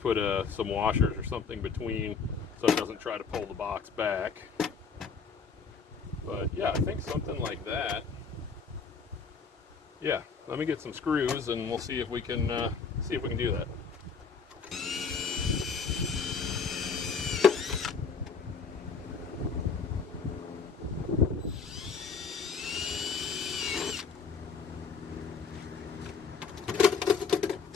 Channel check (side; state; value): right; quieter; 5.4 dB